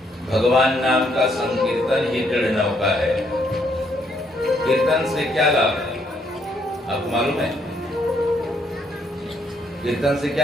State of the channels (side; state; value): both; normal; correlation 0.71